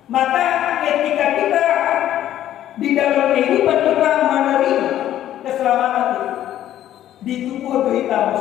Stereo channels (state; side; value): quieter; right; 12.1 dB